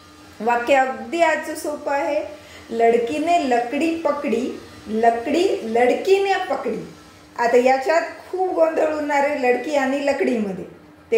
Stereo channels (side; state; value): both; identical; correlation 1.00